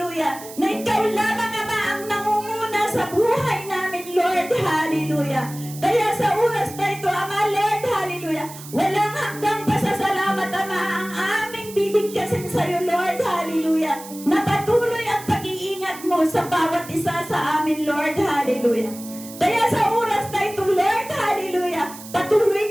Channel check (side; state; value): right; noise; hiss, 15 dB below the sound